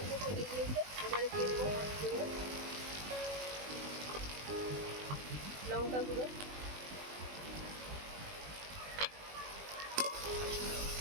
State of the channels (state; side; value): late; left; 20 ms